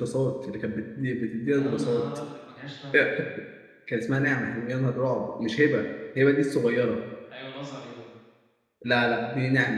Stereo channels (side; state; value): both; identical; correlation 1.00